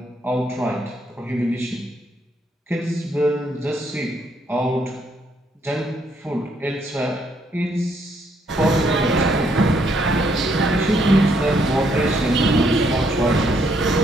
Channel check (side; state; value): both; normal; correlation 0.72